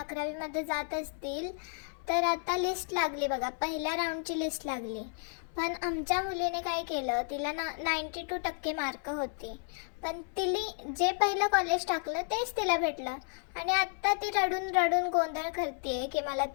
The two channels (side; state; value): right; silent; 56 dB below the other